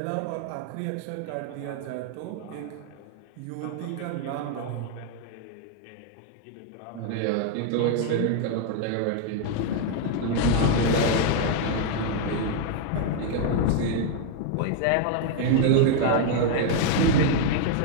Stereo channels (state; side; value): different; both; correlation 0.00